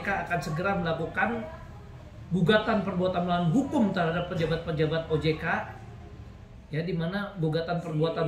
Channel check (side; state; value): both; identical; correlation 1.00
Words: akan segera melakukan gugatan perbuatan melawan hukum terhadap pejabat-pejabat OJK, ya, di mana gugatan